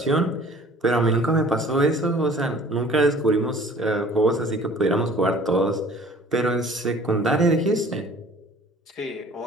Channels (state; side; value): normal; both; correlation 0.50